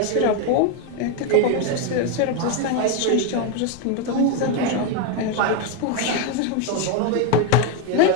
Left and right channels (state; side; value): different; both; correlation 0.02